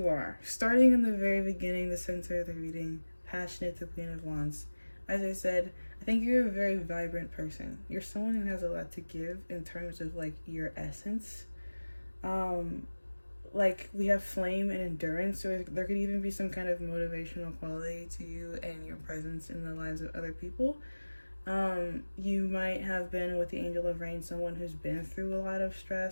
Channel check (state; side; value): inverted; both; correlation -1.00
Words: are? Starting in the very beginning, the center of the reading, passionate, the Queen of Wands. As I said, I think you're a very vibrant person. You're someone who has a lot to give in terms of like your essence. Like we have flame and endurance, so there could even be some kind of motivational quality to you and your presence in the lives of other people. You might have been with the Angel of Rain, someone who's been through a lot of